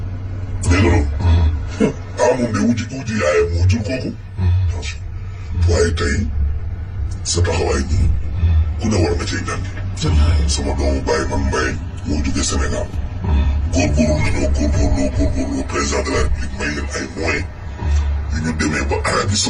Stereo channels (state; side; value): identical; both; correlation 1.00